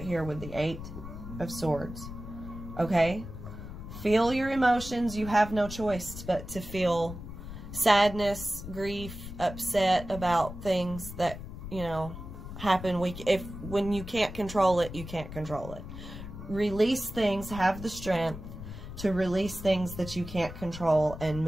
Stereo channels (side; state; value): left; noise; rumble, 11 dB below the sound